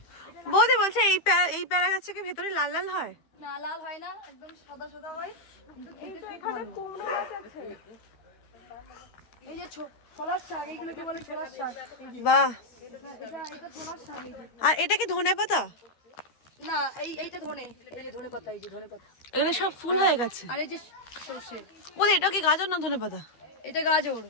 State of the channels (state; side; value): late; right; 13 ms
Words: বৌদি বলছে এই পেয়ারা গাছ থেকে ভেতরে লাল লাল হয়। না, লাল হয় না, একদম সাদা সাদা হয়, কিন্তু খেতে খুব ভালো। এই যে ছোলার শাক, এইগুলোকে বলে ছোলার শাক। বাহ, এটা ছোলার শাক। এই যে, আর এটা কি ধনে পাতা? না, এইটা ধনে, এই যে ধনে পাতা, এই যে ধনে পাতা। এগুলো সব ফুল হয়ে গেছে। আর এই যে সরষে। বৌদি এটা কি গাজর না ধনে পাতা? এটা গাজর।